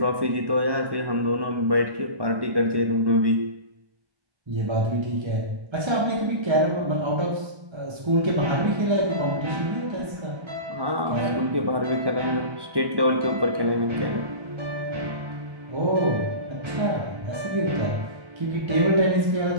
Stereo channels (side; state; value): left; late; 1.1 ms